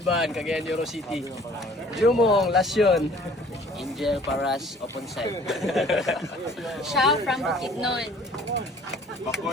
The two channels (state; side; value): normal; both; correlation 0.52